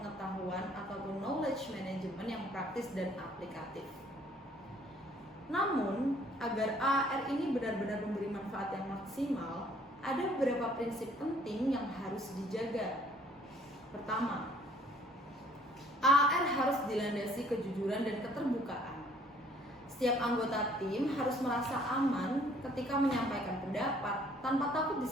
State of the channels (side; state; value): both; normal; correlation 0.60